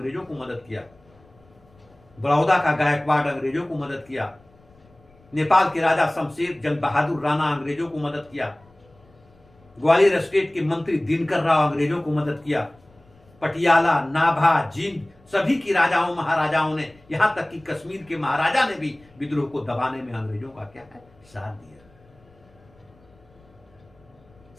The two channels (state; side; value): noise; left; rumble, 29 dB below the sound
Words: को मदद किया, बड़ौदा का गायकवाड़ अंग्रेजों को मदद किया, नेपाल के राजा शमशेर जंग बहादुर राणा अंग्रेजों को मदद किया, ग्वालियर स्टेट के मंत्री दिनकर राव अंग्रेजों को मदद किया, पटियाला, नाभा, जींद सभी की राजाओं महाराजाओं ने, यहां तक कि कश्मीर के महाराजा ने भी विद्रोह को दबाने में अंग्रेजों का क्या है, साथ दिया।